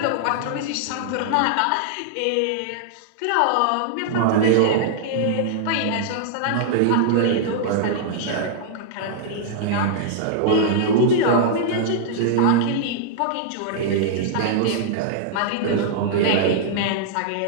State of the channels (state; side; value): different; both; correlation -0.01